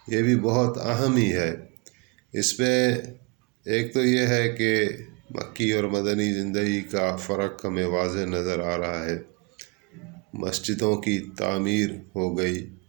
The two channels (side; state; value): left; quieter; 30.0 dB